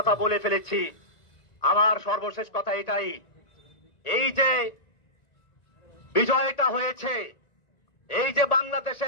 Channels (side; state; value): right; late; 1.9 ms